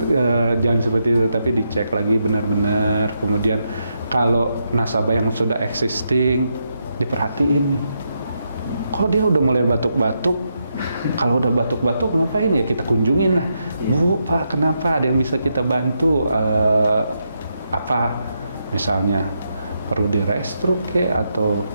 seperti itu, tapi dicek lagi benar-benar. Kemudian kalau nasabah yang sudah existing, diperhatiin nih. Kok dia udah mulai batuk-batuk? Kalau udah batuk-batuk ngapain ya? Kita kunjungin lah. Bu, Pak, kenapa? Ada yang bisa kita bantu? Apa misalnya perlu di-restruct atau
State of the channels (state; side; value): inverted; both; correlation -0.82